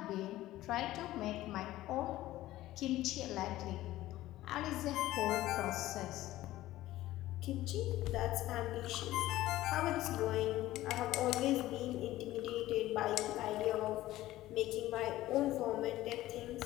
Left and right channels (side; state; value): right; quieter; 15.6 dB